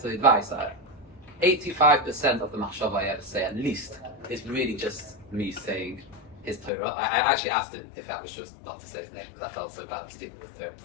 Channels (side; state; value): right; drops out; at 6.7 s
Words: of the advice. 85% of the machshava I ever say, at least, is really just me saying his Torah. I actually asked him if I was just not to say his name because I felt so bad stealing with Torah. He